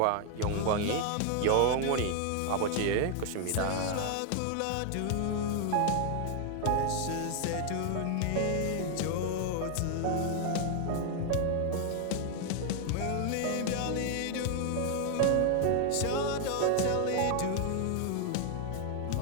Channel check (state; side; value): different; both; correlation 0.00